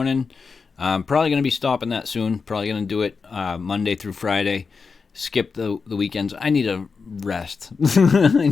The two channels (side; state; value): right; quieter; 5.0 dB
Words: I'm probably going to be stopping that soon. Probably going to do it Monday through Friday. Skip the weekends. I need a rest.